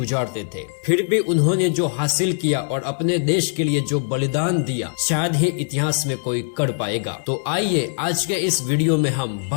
थे। फिर भी उन्होंने जो हासिल किया और अपने देश के लिए जो बलिदान दिया शायद ही इतिहास में कोई कर पाएगा। तो आइए आज के इस वीडियो में हम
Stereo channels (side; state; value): right; silent; digital silence